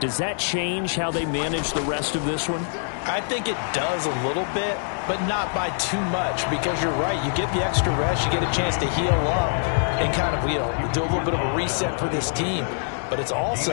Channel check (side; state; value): right; silent; digital silence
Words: that change how they manage the rest of this one? I think it does a little bit, but not by too much, because you're right. You get the extra rest, you get a chance to heal up and kind of, do a little bit of a reset for this team. But it's